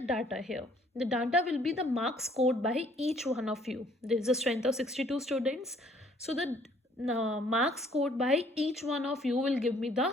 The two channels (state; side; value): normal; both; correlation 0.61